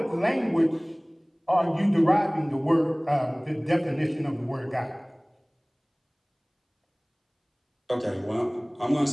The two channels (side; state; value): both; identical; correlation 1.00